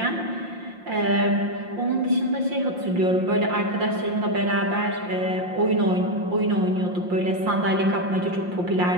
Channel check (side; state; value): left; late; 5.7 ms